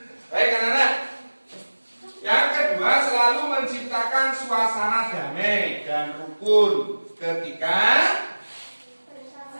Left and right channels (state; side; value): inverted; both; correlation -1.00